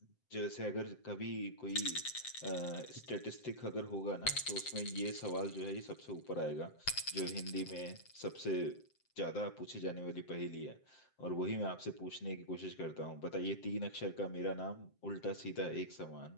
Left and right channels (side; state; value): right; late; 7.7 ms